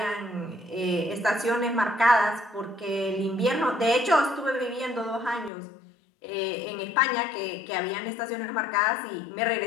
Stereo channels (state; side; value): drops out; right; at 5.5 s